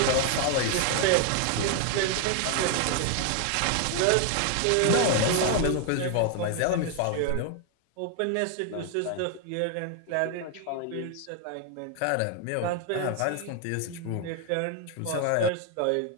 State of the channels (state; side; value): different; both; correlation 0.00